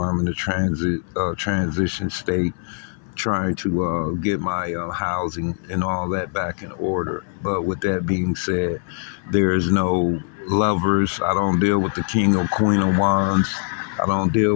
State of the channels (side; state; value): right; silent; 61 dB below the other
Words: I'm in a transition state, trying to get my housing and all that back in order. But with that being said, there is no lovers. I don't deal with the king or queen of wands. I don't deal